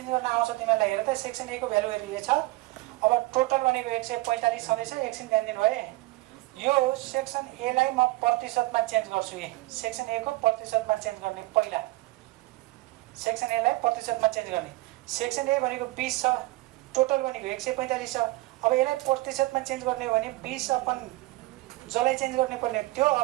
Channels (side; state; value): left; quieter; 20.2 dB